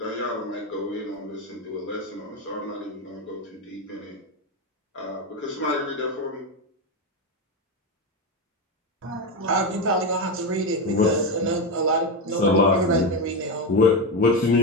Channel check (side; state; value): both; normal; correlation 0.13